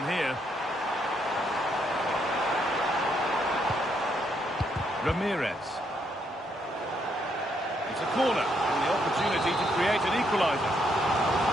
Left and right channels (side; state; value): both; normal; correlation 0.75